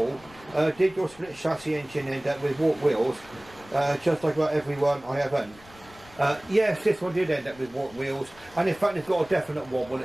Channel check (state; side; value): noise; left; rumble, 23 dB below the sound